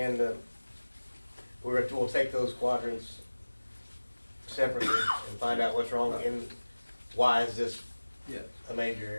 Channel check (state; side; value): inverted; both; correlation -1.00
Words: we'll take those quadrants separately and find out what's wrong and why is this Yeah. a major